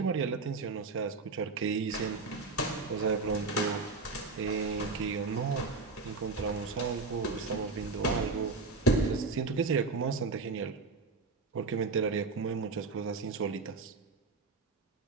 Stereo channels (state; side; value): quieter; left; 3.9 dB